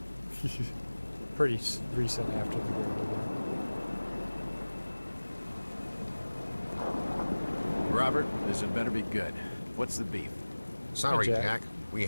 Pretty recent after the Great War. Robert, this had better be good. What's the beef? Sorry, Hi, Jack. Jack. We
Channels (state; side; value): inverted; both; correlation -1.00